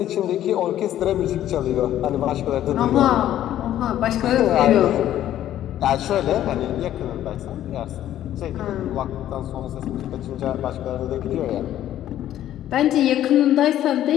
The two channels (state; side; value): quieter; right; 12.2 dB